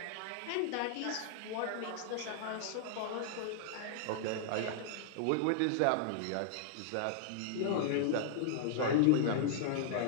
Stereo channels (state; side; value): different; both; correlation -0.01